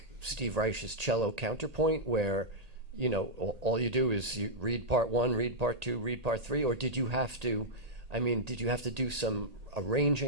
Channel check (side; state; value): left; late; 1.8 ms